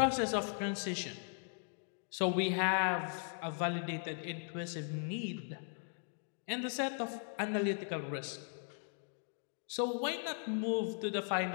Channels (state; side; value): silent; right; 52 dB below the other